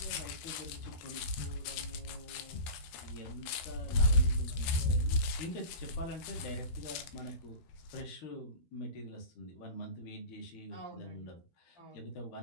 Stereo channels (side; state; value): right; late; 13 ms